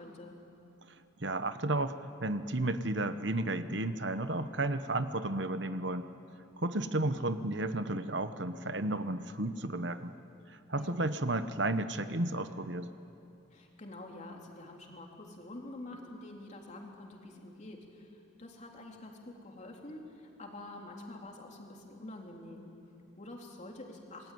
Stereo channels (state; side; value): normal; both; correlation 0.36